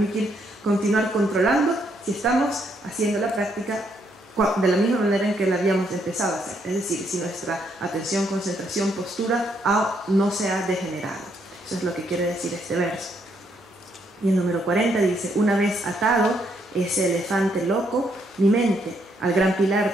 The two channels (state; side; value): normal; both; correlation 0.73